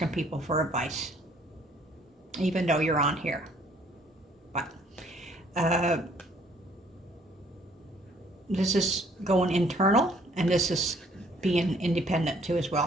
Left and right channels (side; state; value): both; normal; correlation 0.61